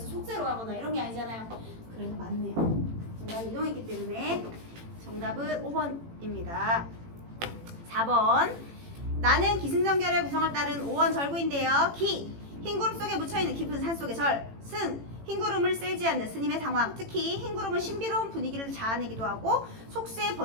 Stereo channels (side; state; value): left; late; 18 ms